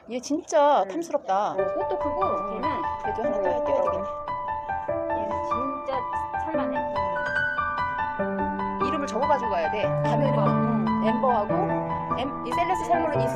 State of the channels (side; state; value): both; identical; correlation 1.00